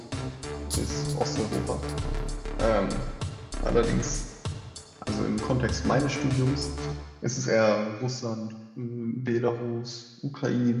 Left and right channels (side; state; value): both; identical; correlation 1.00